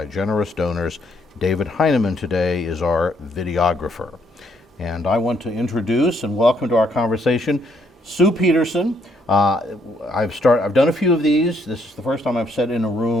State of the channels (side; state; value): both; normal; correlation 0.71